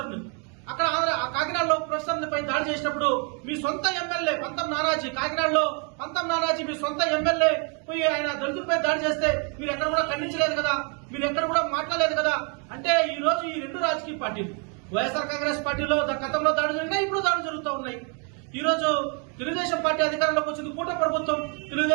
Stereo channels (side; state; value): left; quieter; 36.9 dB